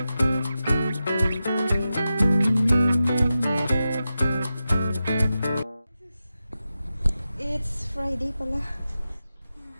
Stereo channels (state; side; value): inverted; both; correlation -0.92